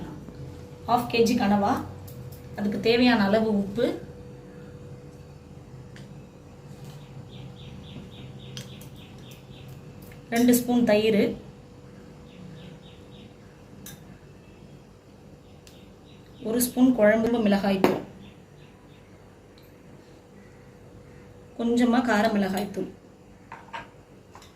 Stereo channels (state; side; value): identical; both; correlation 1.00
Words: 1/2 kg கனவா, அதுக்கு தேவையான அளவு உப்பு, ரெண்டு ஸ்பூன் தயிர், ஒரு ஸ்பூன் குழம்பு மிளகாய் தூள், கொஞ்சமாக கார மிளகாய் தூள்,